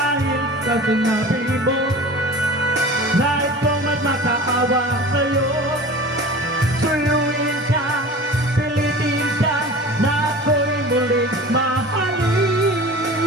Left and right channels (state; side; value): normal; both; correlation 0.38